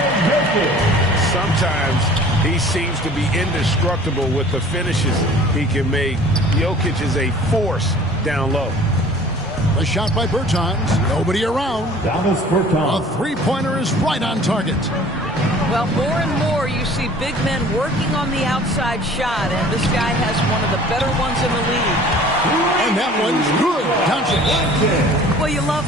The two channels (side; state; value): both; normal; correlation 0.48